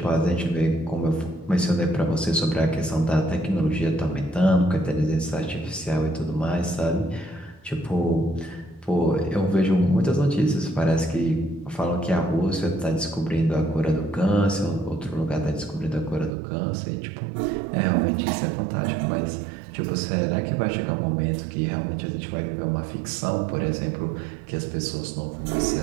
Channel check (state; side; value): drops out; left; at 16.3 s